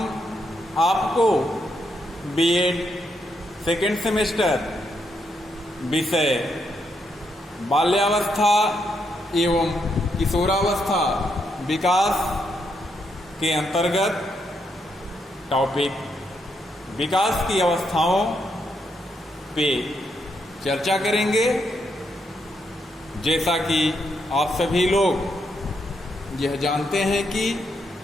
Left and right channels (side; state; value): both; normal; correlation 0.79